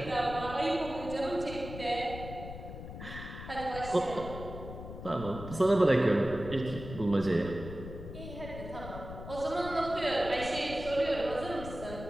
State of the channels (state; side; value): noise; left; rumble, 10 dB below the sound